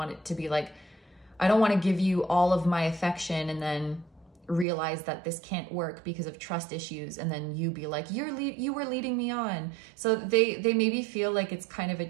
it to be like, I don't want to give you all of my affection and then realize that this can't work because of trust issues. And then you be like, you were leading me on. So they maybe feel like it's kind of a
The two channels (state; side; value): drops out; left; at 4.7 s